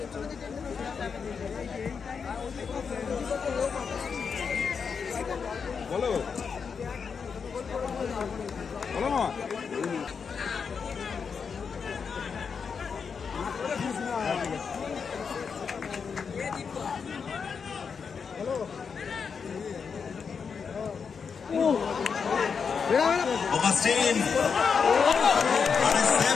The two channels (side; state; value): right; quieter; 6.0 dB